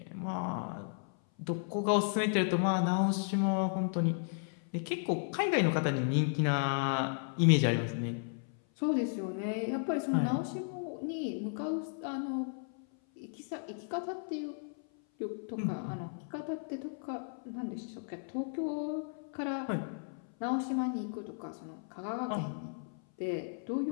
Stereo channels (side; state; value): right; silent; 55 dB below the other